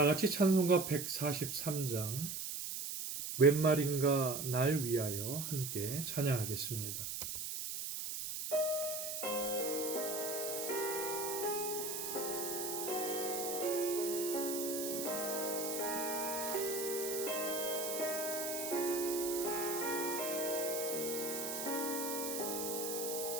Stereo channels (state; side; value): noise; right; hiss, 4 dB below the sound